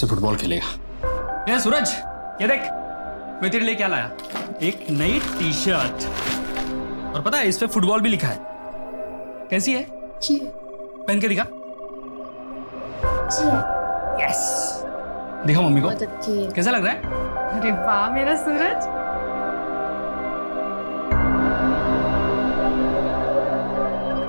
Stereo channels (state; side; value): inverted; both; correlation -1.00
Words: फुटबॉल खेलेगा। ये सूरज, ये देख मैं तेरे लिए क्या लाया, एक नई टी शर्ट। और पता है इस पे फुटबॉल भी लिखा है। कैसी है? पहन के दिखा। यस, दिखा मम्मी को, कैसा लग रहा है? अरे वाह मेरा सूरज।